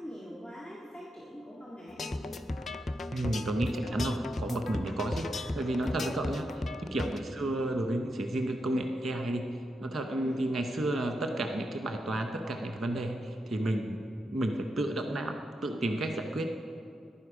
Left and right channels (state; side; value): normal; both; correlation 0.85